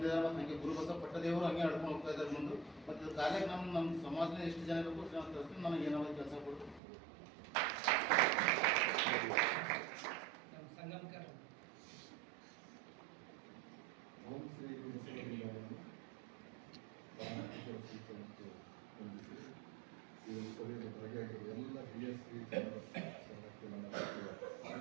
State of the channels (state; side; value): drops out; left; at 6.8 s